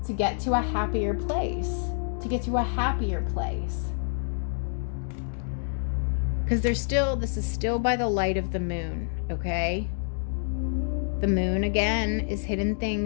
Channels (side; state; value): right; silent; digital silence